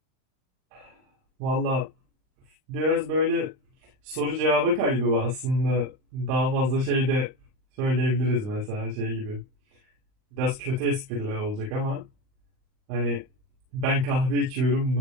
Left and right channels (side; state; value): left; late; 39 ms